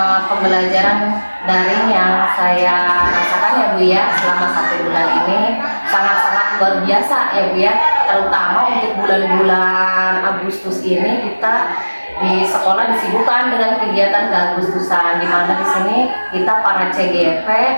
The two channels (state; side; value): inverted; both; correlation -1.00